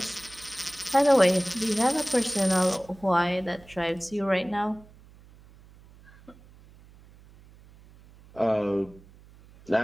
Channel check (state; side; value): noise; right; hum, 24 dB below the sound